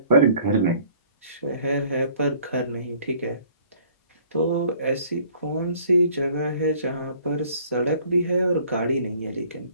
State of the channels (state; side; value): inverted; both; correlation -0.57